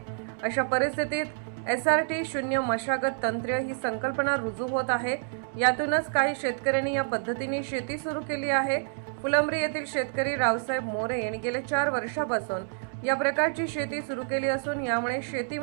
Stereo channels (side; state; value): left; silent; 59 dB below the other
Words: अशा परिस्थितीत SRT शून्य मशागत तंत्र ही संकल्पना रुजू होत आहे. यातूनच काही शेतकऱ्यांनी या पद्धतीने शेती सुरू केली आहे. फुलंब्री येथील शेतकरी रावसाहेब मोरे यांनी गेल्या 4 वर्षापासून या प्रकारची शेती सुरू केली असून यामुळे